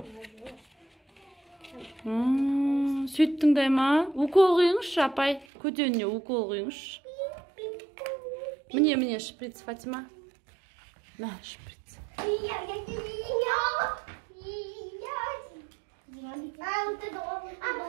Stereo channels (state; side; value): drops out; left; at 5.5 s